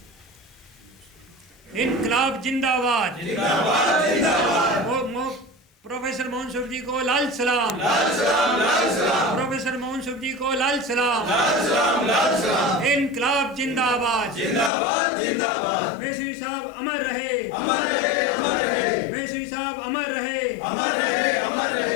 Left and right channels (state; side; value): drops out; right; at 14.7 s